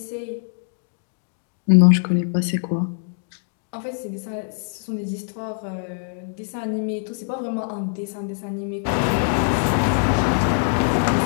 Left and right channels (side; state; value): right; silent; 63 dB below the other